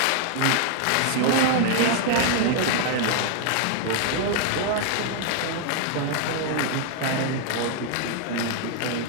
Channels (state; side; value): different; both; correlation 0.00